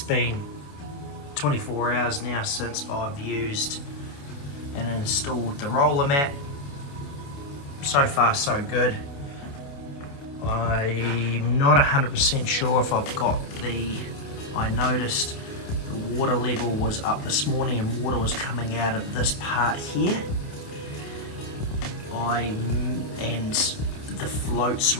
been 24 hours now since I've used and installed the roller mat. So far so good. I'm not 100% sure if I've got I noticed the water level was up this morning and water was coming out of this part here. And the float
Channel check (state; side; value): late; right; 28 ms